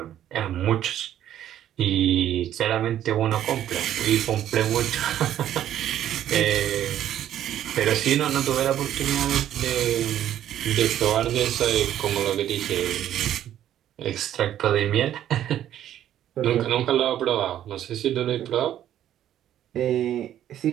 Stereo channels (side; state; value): left; quieter; 11.4 dB